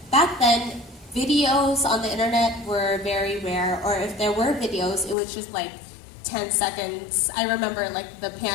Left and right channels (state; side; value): drops out; right; at 5.2 s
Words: back then, videos on the internet were very rare, or if there were videos, it was just like 10 seconds. I remember like the